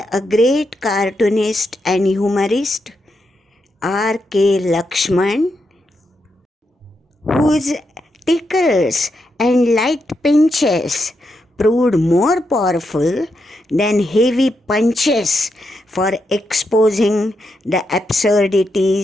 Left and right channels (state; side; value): normal; both; correlation 0.83